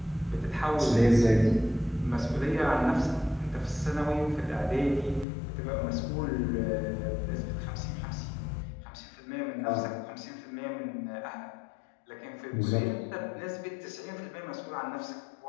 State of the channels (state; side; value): drops out; right; at 5.2 s